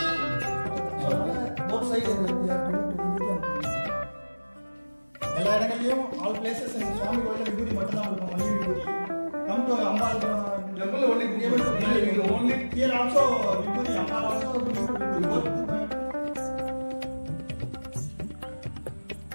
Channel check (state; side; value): inverted; both; correlation -1.00